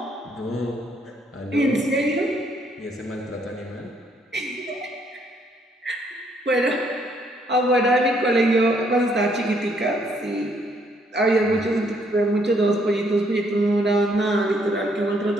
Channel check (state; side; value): normal; both; correlation 0.69